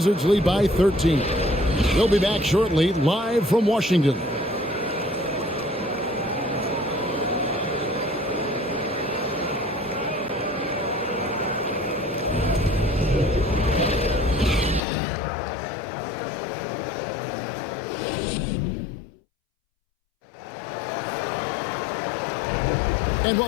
lead by 13. They'll be back shortly, live from Washington. And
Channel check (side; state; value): right; drops out; at 14.8 s